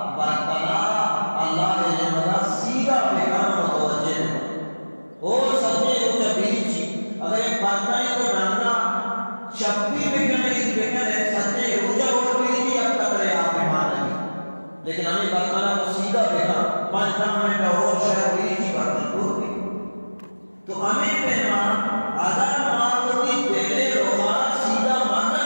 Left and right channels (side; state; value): both; inverted; correlation -1.00